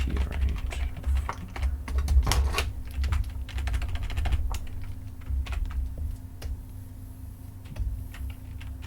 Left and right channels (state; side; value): identical; both; correlation 1.00